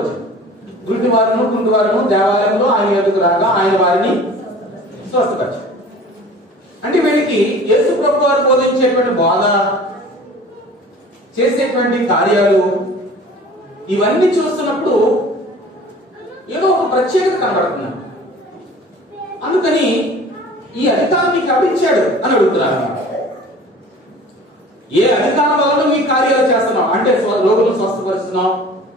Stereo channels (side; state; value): both; normal; correlation 0.44